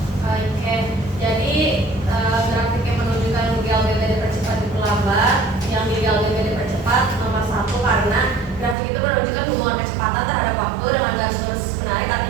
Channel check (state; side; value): drops out; left; at 8.8 s